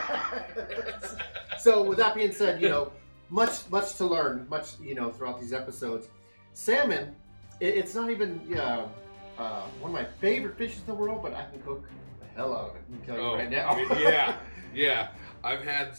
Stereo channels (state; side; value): inverted; both; correlation -1.00